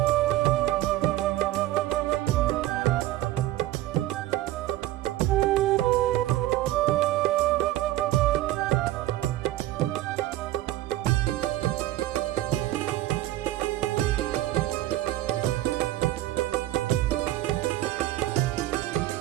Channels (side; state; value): left; quieter; 15.2 dB